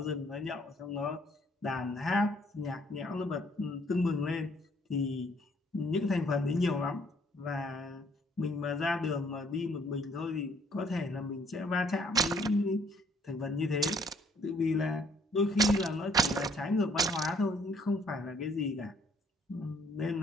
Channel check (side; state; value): both; normal; correlation 0.63